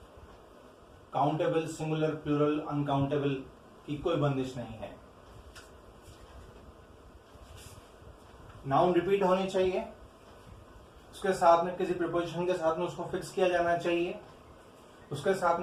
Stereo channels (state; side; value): identical; both; correlation 1.00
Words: काउंटेबल, सिंगुलर, प्लूरल, अनकाउंटेबल की कोई बंदिश नहीं है। नाउन रिपीट होनी चाहिए, उसके साथ में किसी प्रीपोजिशन के साथ में उसको फिक्स किया जाना चाहिए, उसके साथ